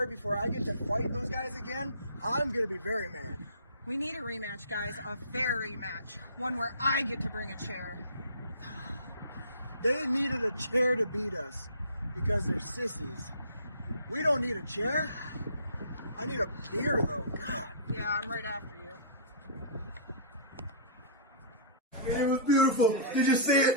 before I get to fight those guys again, I'm going to be very mad. We need a rematch, guys. A fair rematch. One where I get to bring a chair. They needed a chair to beat us because they're sissies. We don't need a chair. I need a beer, though. God. Yeah, I'm right after you. It was beautiful. Did you see it?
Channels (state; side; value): inverted; both; correlation -0.42